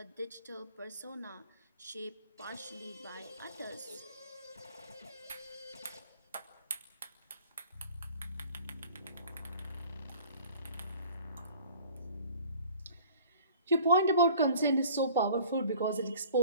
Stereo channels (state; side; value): inverted; both; correlation -0.48